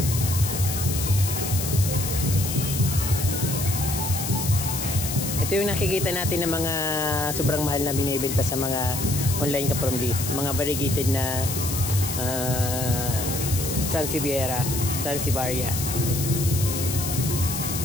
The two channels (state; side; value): noise; left; hiss, 4 dB below the sound